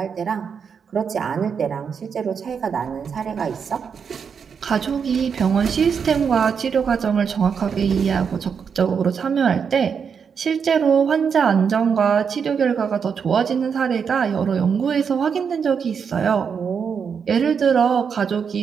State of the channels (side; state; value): left; quieter; 6.6 dB